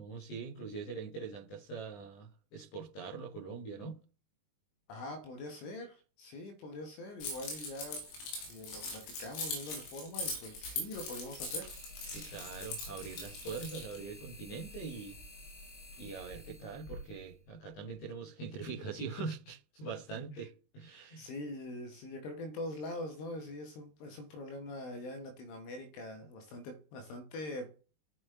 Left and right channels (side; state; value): right; late; 20 ms